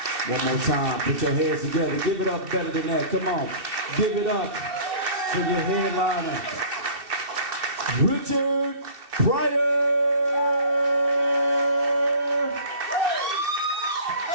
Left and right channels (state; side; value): late; left; 2.7 ms